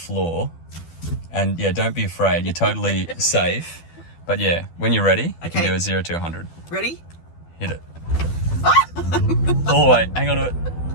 And don't be afraid. You're totally safe. But when you're ready, you can do a 0 to 100. Ready? Hit it. All the way. Hang on to it.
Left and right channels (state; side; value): late; right; 12 ms